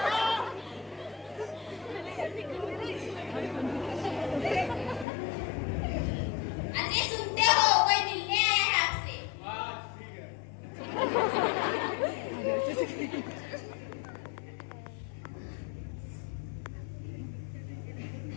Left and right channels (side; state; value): right; drops out; at 5.1 s